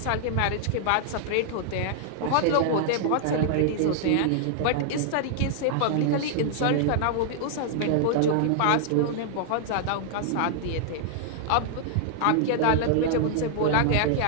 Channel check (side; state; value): both; different; correlation -0.01